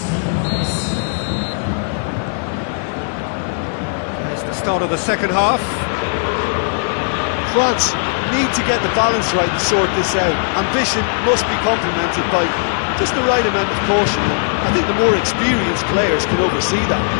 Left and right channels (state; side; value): silent; right; digital silence